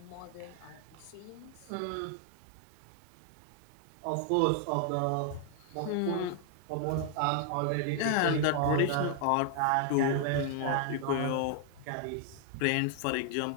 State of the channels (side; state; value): both; different; correlation 0.00